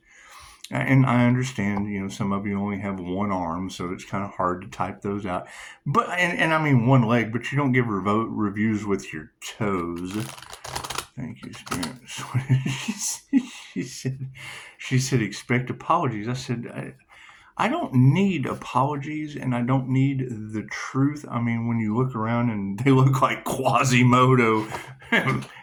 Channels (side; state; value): both; identical; correlation 1.00